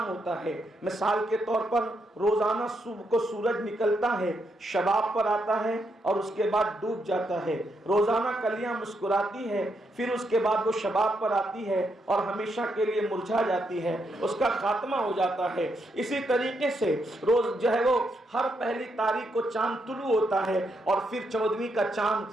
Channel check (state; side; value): normal; both; correlation 0.79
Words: ہوتا ہے۔ مثال کے طور پر روزانہ صبح کو سورج نکلتا ہے، شباب پر آتا ہے اور اس کے بعد ڈوب جاتا ہے۔ روزانہ کلیاں مسکراتی ہے، پھر اس کے بعد وہ شباب پر آتی ہے اور ہمیشہ کے لیے مرجھا جاتی ہے، اس کا خاتمہ ہو جاتا ہے۔ اسی طریقے سے روز جو ہے وہ ہر پہلی تاریخ کو چاند طلوع ہوتا ہے اور پھر 14ویں کا